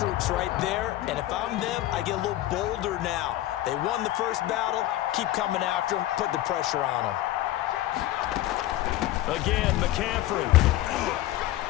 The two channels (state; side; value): quieter; right; 15.0 dB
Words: right there. And if I'm them, I get a little bolder now. They won the first battle. Keep coming after them. Put the pressure on them. Again, McCaffrey.